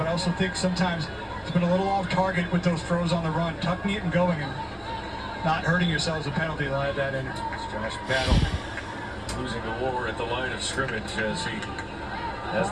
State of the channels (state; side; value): identical; both; correlation 1.00